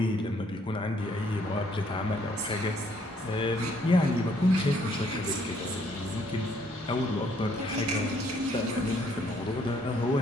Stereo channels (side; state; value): both; normal; correlation 0.66